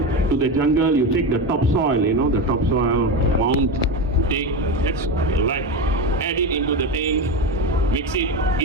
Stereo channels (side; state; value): both; normal; correlation 0.18